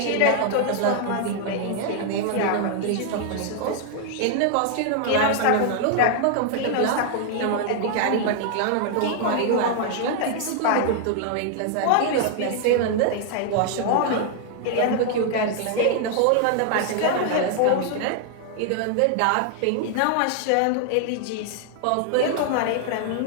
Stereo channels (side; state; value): both; different; correlation 0.00